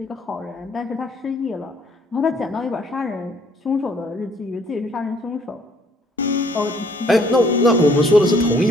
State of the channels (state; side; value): normal; both; correlation 0.62